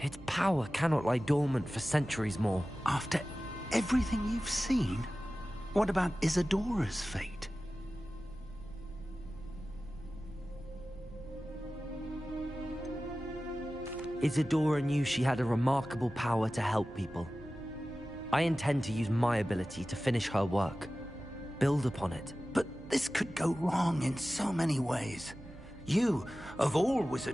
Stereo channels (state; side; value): noise; right; hum, 18 dB below the sound